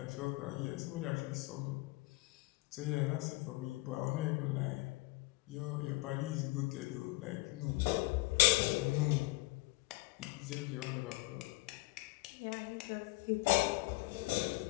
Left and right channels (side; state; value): right; quieter; 22.6 dB